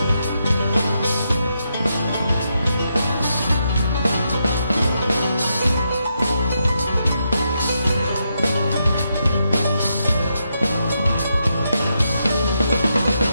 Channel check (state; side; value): inverted; both; correlation -0.82